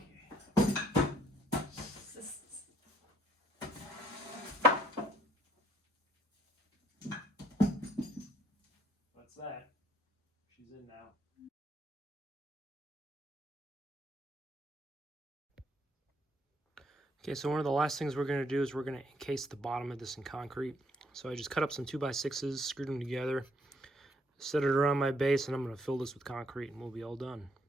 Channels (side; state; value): both; normal; correlation 0.67